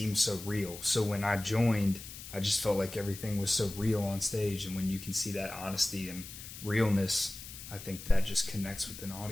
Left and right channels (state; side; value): noise; left; hiss, 13 dB below the sound